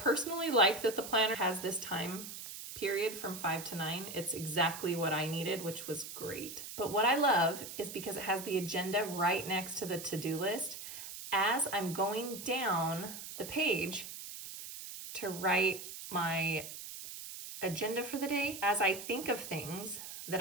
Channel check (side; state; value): right; noise; hiss, 10 dB below the sound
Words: like that the planner has this time period from 5 to 9. It's exactly what I needed, which was great. But what I love is because it has the agenda right next to the to-do list. As I'm going down the page to write my agenda for the day, as I think of things